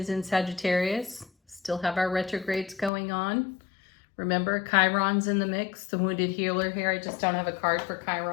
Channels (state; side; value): drops out; right; at 2.9 s